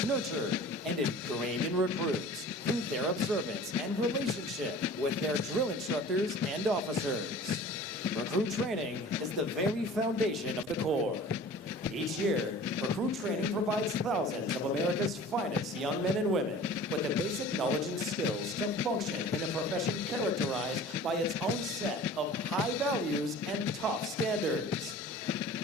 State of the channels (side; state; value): both; normal; correlation 0.43